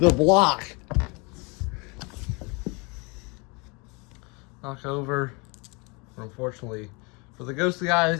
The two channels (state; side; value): quieter; right; 29.7 dB